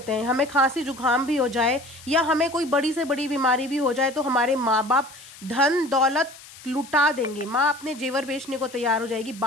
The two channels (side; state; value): left; noise; hiss, 19 dB below the sound